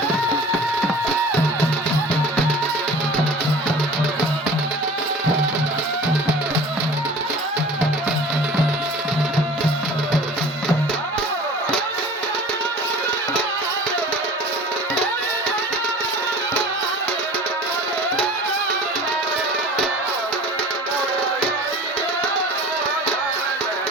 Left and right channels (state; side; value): normal; both; correlation 0.42